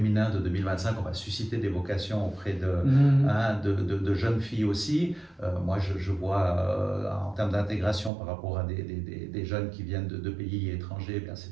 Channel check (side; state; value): left; drops out; at 8.1 s